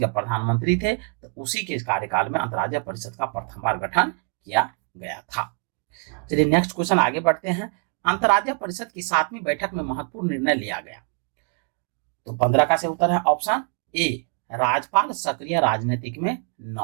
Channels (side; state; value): left; quieter; 35.0 dB